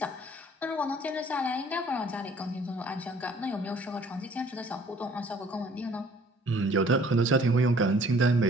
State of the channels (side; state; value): both; normal; correlation 0.56